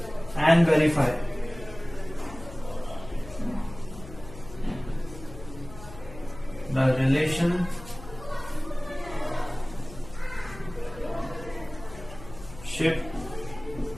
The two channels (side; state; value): left; noise; hum, 15 dB below the sound